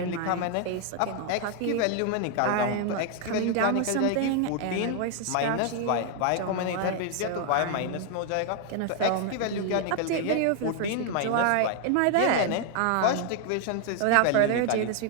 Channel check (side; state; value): both; different; correlation 0.00